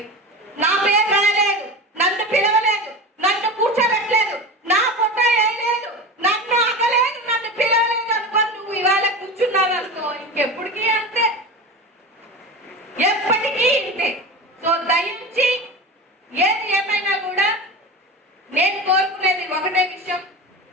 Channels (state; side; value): normal; both; correlation 0.27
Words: నా పేరు రాయలేదు, నన్ను పిలవలేదు, నన్ను కూర్చోబెట్టలేదు, నా ఫోటో వేయలేదు, నన్ను అగలేదు, నన్ను పిలవలేదు అనుకోని నువ్వు ఇవాళ కూర్చున్నావు అనుకో, ఇంకెప్పటికీ అంతే, ఎప్పటికీ ఇంతే. సో దయించి ఏది ఏమైనా కూడా నేను కోరుకునేది ఒకటే విషయం,